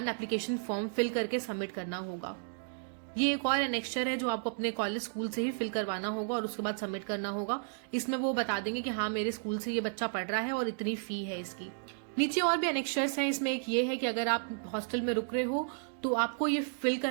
application form fill करके सबमिट करना होगा। ये एक और एनेक्स्चर है जो आपको अपने कॉलेज स्कूल से ही फिल करवाना होगा और उसके बाद सबमिट करना होगा। इसमें वो बता देंगे कि हाँ मेरे स्कूल से ये बच्चा पढ़ रहा है और इतनी फी है इसकी। नीचे और भी एनेक्स्चर्स हैं, इसमें एक ये है कि अगर आप हॉस्टल में रुक रहे हो तो आपको ये फिल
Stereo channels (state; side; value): silent; left; digital silence